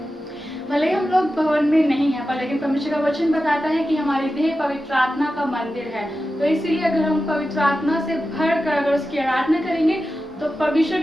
भले ही हम लोग भवन में नहीं हैं, पर लेकिन परमेश्वर का वचन बताता है कि हमारी देह पवित्र आत्मा का मंदिर है। तो इसीलिए अगर हम पवित्र आत्मा से भर कर अगर उसकी आराधना करेंगे तो परमेश्वर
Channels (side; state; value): both; normal; correlation 0.92